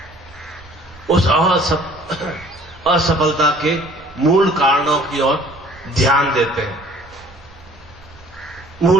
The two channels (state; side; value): noise; right; rumble, 24 dB below the sound